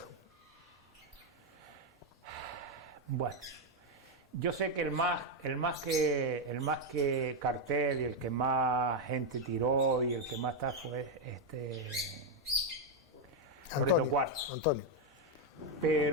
Bueno, yo sé que el más que cartel y el que más gente tiró y el que más está fue Loreto Cuarto. Antonio.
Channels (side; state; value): both; normal; correlation 0.02